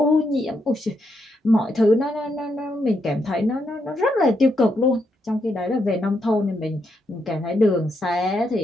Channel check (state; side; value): normal; both; correlation 0.80